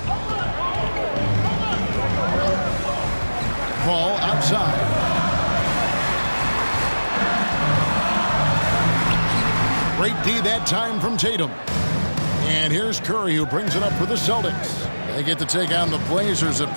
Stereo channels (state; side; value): inverted; both; correlation -1.00